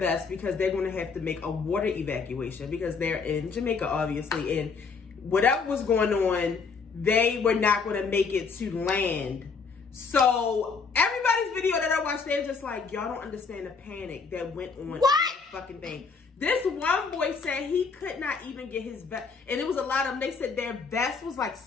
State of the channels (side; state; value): right; quieter; 5.1 dB